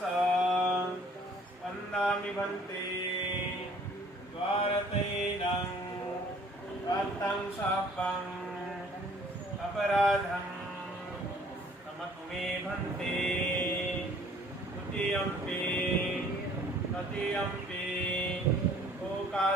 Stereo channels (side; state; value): both; normal; correlation 0.56